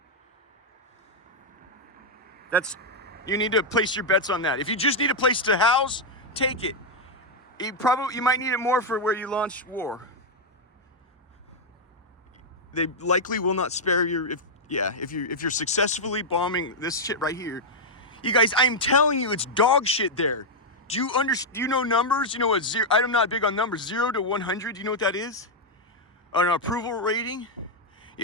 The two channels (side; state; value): both; normal; correlation -0.02